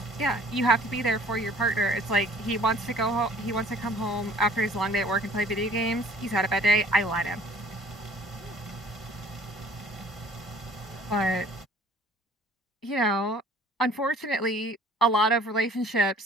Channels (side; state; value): both; normal; correlation 0.53